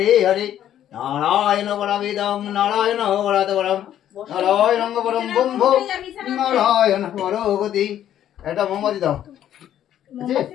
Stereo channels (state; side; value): quieter; right; 11.1 dB